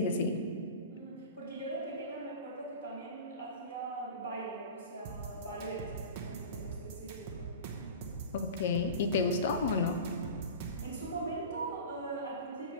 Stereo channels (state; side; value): inverted; both; correlation -0.33